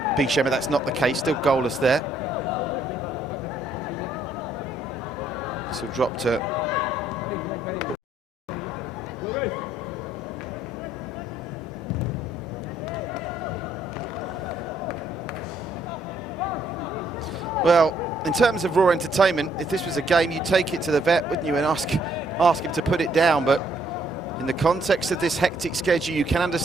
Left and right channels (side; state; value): both; normal; correlation 0.69